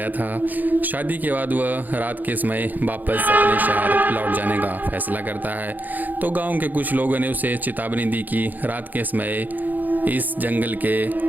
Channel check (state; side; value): late; left; 0.084 ms